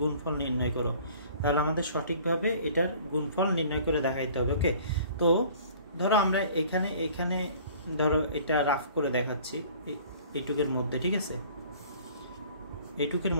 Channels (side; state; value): both; inverted; correlation -0.50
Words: গুণফল নির্ণয় করো। তাহলে আমাদের সঠিকভাবে এটার গুণফল নির্ণয় করে দেখাইতে হবে। ওকে, তো ধরো আমরা এখানে ধরো এটা রাফ করে দেখাচ্ছি এইটুকের মধ্যে, ঠিক আছে, এইটুকের